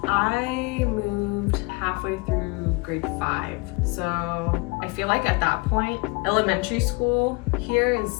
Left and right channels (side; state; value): right; quieter; 27.7 dB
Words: I moved halfway through grade 5. So I feel like at that point, elementary school here